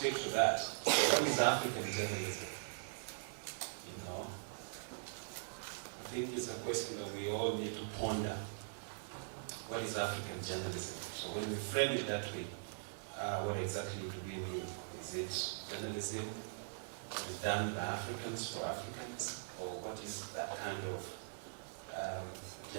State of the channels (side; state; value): left; silent; digital silence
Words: to that. So what is African journalism? I think it's a question that we all need to ponder. What is African journalism? So when we frame it that way, what exactly do we mean? Is it journalism? Is it done by Africans for Africans? Or what is that kind of